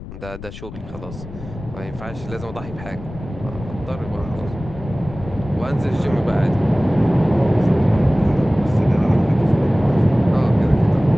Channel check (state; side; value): noise; left; rumble, 13 dB below the sound